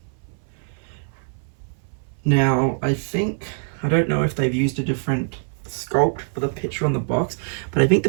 Now I don't know if they've used a different sculpt for the picture on the box, but I think the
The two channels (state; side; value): silent; left; 59 dB below the other